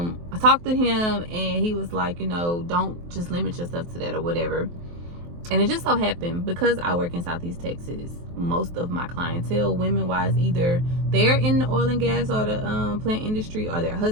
talked to him, and he was like, don't just limit yourself to that or whatever. And it just so happened, because I work in Southeast Texas, most of my clientele, women-wise, either they're in the oil and gas or the plant industry, or their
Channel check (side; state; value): left; late; 23 ms